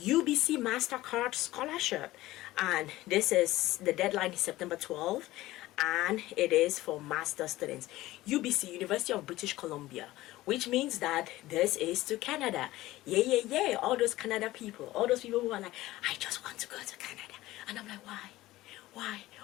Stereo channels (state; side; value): quieter; right; 17.1 dB